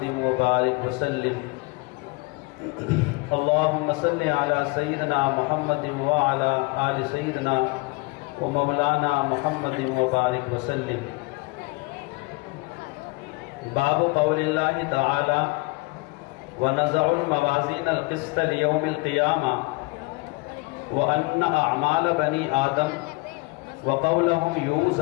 وبارک وسلم۔ اللہم صلی علی سیدنا محمد وعلی آل سیدنا و مولانا محمد وبارک وسلم۔ باب قول اللہ تعالی وَنَزَعُ الْمَوَازِينَ الْقِسْطَ لِيَوْمِ الْقِيَامَةِ وَأَنَّ أَعْمَالَ بَنِي آدَمَ وَقَوْلَهُمْ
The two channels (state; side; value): quieter; right; 25.8 dB